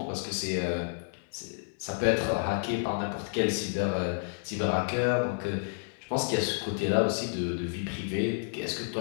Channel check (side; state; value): right; silent; digital silence